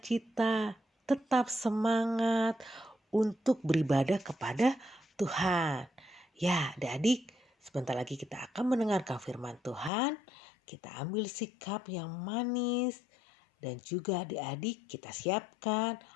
tetap semangat untuk beribadah kepada Tuhan. Ya adik-adik, sebentar lagi kita akan mendengarkan firman Tuhan. Kita ambil sikap yang manis dan juga adik-adik kita siapkan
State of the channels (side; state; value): right; drops out; at 9.9 s